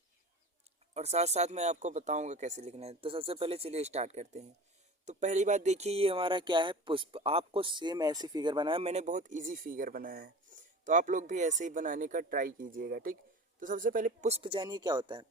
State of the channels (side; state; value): both; normal; correlation 0.36